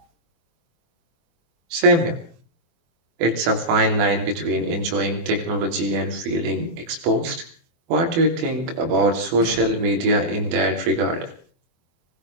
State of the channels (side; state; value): left; late; 24 ms